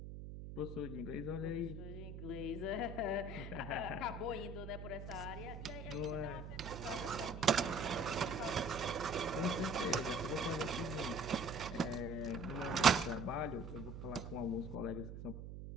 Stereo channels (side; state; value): right; noise; hum, 9 dB below the sound